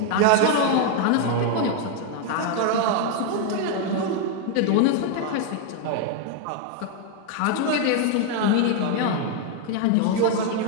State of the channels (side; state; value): both; different; correlation 0.01